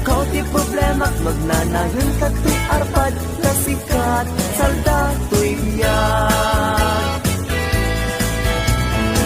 ti problemak, magnanayon katoy arpad, na sikat salda to'y biyag.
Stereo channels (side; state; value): both; identical; correlation 1.00